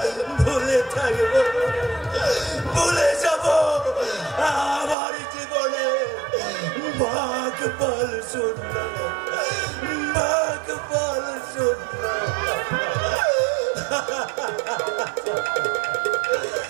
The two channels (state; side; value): drops out; left; at 5.0 s